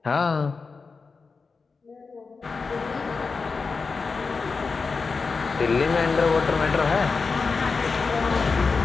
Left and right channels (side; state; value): right; quieter; 4.6 dB